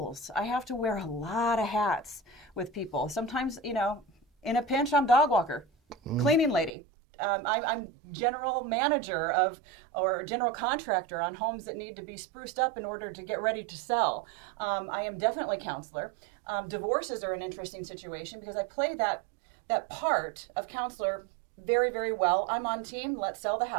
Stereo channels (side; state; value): left; drops out; at 6.7 s